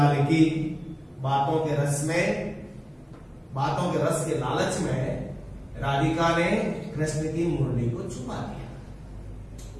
की, बातों के रस में, बातों के रस के लालच में राधिका ने कृष्ण की मुरली को छुपा दिया।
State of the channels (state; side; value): identical; both; correlation 1.00